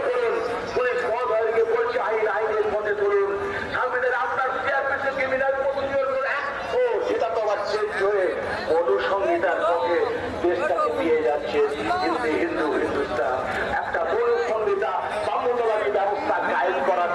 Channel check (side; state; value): both; identical; correlation 1.00